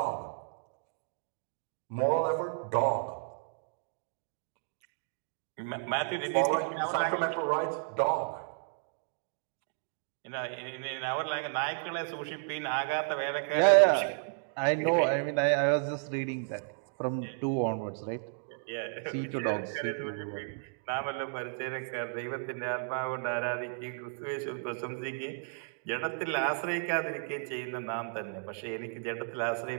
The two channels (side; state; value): left; silent; digital silence